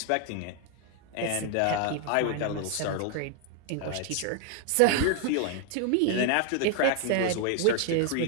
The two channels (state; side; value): different; both; correlation 0.00